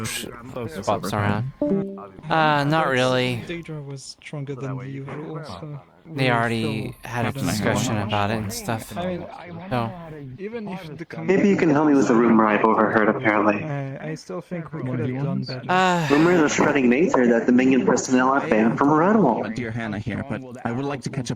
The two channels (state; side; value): identical; both; correlation 1.00